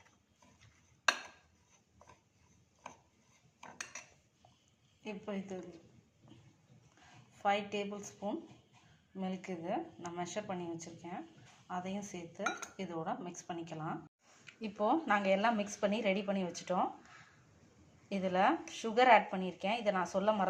இப்போ இது 5 டேபிள் ஸ்பூன் மில்க் இது நான் மெஷர் பண்ணி வச்சுருக்கேன். அதையும் சேர்த்து இதோட மிக்ஸ் பண்ணிக்கலாம். இப்போது நாங்கள் எல்லாம் மிக்ஸ் பண்ணி ரெடி பண்ணி வச்சுட்டோம். இதில் சுகர் ஆட் பண்ணியிருக்கேன். இதை நான் சொல்ல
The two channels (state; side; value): identical; both; correlation 1.00